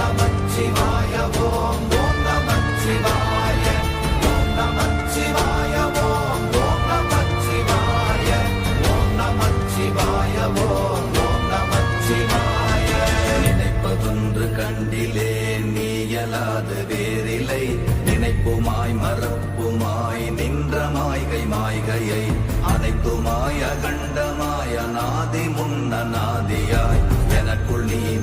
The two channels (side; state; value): both; identical; correlation 1.00